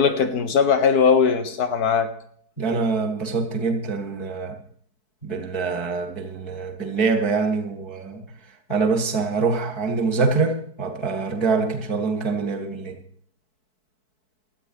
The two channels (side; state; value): right; late; 4.6 ms